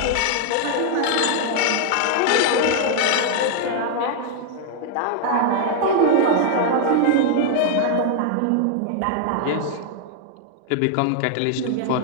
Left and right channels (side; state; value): both; different; correlation 0.00